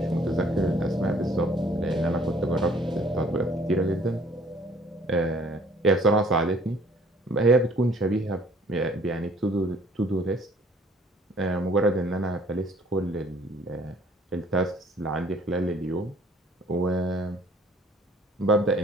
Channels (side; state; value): both; normal; correlation 0.57